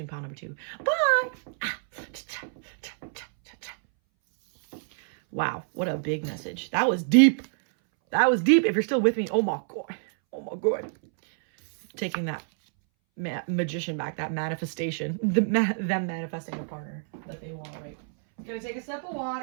pile number 2. Bye. Wow, what a big message. That was deep. That was deep. If you're still with me, oh my God. Oh my God. Taking that magician back, that manifestation, them manifesting a partner that they want, right? Gonna take a sip of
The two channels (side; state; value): left; silent; 60 dB below the other